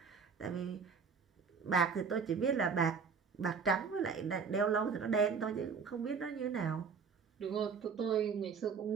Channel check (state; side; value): quieter; left; 5.8 dB